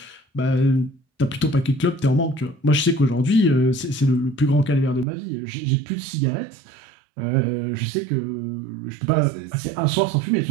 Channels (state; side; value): drops out; left; at 5.1 s